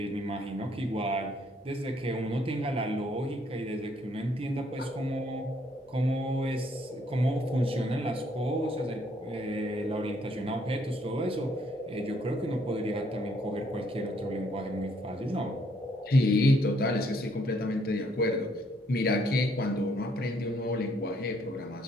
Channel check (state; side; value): normal; both; correlation 0.68